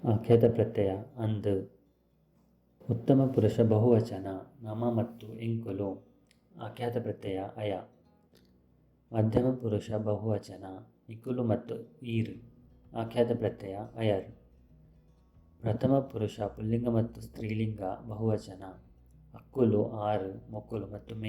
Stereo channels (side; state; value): both; identical; correlation 1.00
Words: ಆಖ್ಯಾತ ಪ್ರತ್ಯಯ ಅಂದು. ಉತ್ತಮ ಪುರುಷ ಬಹುವಚನ ನಮ ಮತ್ತು ಎಂಕುಲು ಆಖ್ಯಾತ ಪ್ರತ್ಯಯ ಅಯ. ಮಧ್ಯಮ ಪುರುಷ ಬಹುವಚನ ನಿಕುಲು ಮತ್ತು ಈರ್ ಆಖ್ಯಾತ ಪ್ರತ್ಯಯ ಅಯರ್. ಪ್ರಥಮ ಪುರುಷ ಪುಲ್ಲಿಂಗ ಮತ್ತು ಸ್ತ್ರೀಲಿಂಗ ಬಹುವಚನ ಅಕ್ಕುಲು ಆರು ಮೊಕ್ಕುಲು ಮತ್ತು